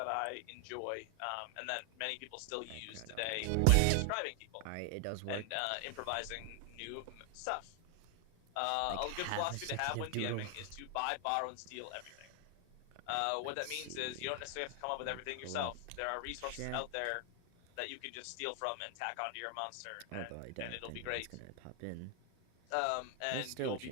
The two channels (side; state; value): both; different; correlation 0.00